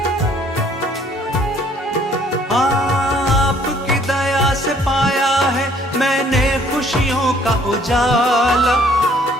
आपकी दया से पाया है मैंने खुशियों का उजाला।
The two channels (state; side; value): normal; both; correlation 0.61